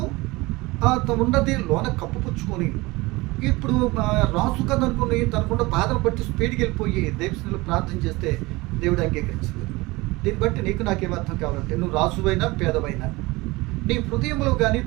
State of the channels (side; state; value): left; quieter; 22.1 dB